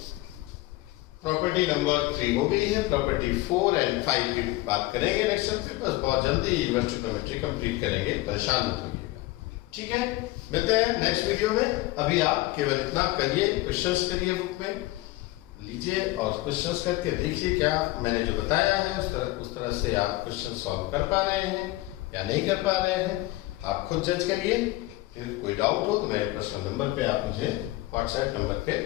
प्रॉपर्टी नंबर 3 हो गई है, प्रॉपर्टी 4 एंड 5 की बात करेंगे नेक्स्ट टाइम। बस बहुत जल्दी इन्वर्स ट्रिग्नोमेट्री कंप्लीट करेंगे, परेशान मत होइएगा, ठीक है? मिलते हैं नेक्स्ट वीडियो में। अभी आप केवल इतना करिए, क्वेश्चंस करिए, बुक में लीजिए और क्वेश्चंस करके देखिए क्या मैंने जो बताया है उस तरह से आप क्वेश्चन सॉल्व कर पा रहे हैं या नहीं कर पा रहे हैं, आप खुद जज करिए। फिर कोई डाउट हो तो मेरे पर्सनल नंबर पे आप मुझे व्हाट्सएप नंबर पे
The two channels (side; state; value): right; quieter; 18.8 dB